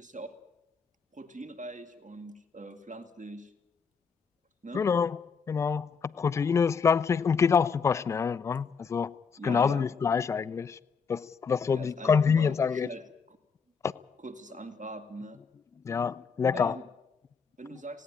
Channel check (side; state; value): right; quieter; 5.8 dB